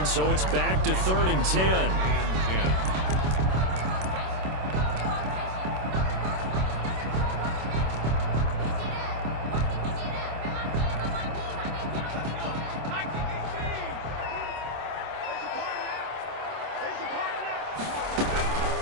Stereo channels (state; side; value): late; left; 26 ms